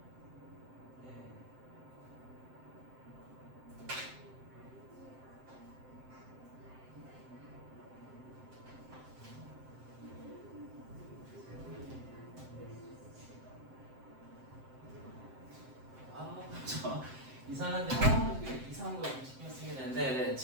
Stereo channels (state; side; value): late; left; 7.7 ms